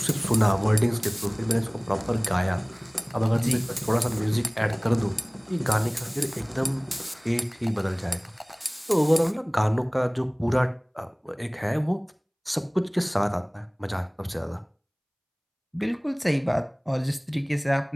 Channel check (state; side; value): identical; both; correlation 1.00